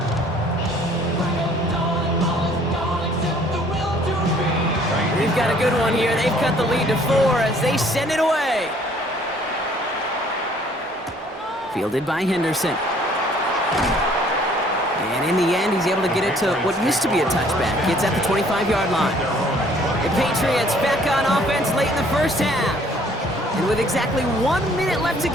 We've got a good one here. They've cut the lead to 4 as they send it away. Fielded by Henderson. And in the end, he's able to get it to what used to be a touchback. It's at the 25-yard line. The Patriots back on offense late in the first half. And with exactly 1 minute left to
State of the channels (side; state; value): both; normal; correlation 0.59